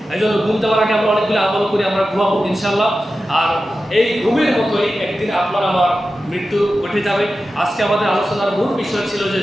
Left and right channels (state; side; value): normal; both; correlation 0.93